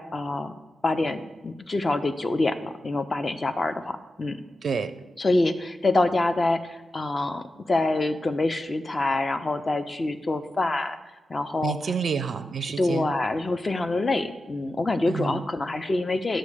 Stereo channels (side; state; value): both; normal; correlation 0.92